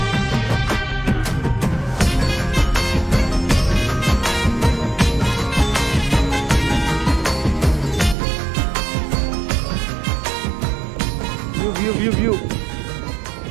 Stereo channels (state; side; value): drops out; left; at 8.2 s